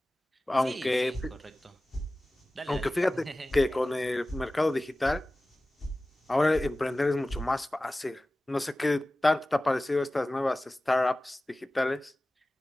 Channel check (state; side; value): normal; both; correlation 0.97